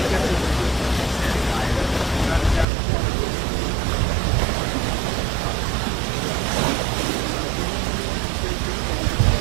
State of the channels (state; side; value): drops out; left; at 2.7 s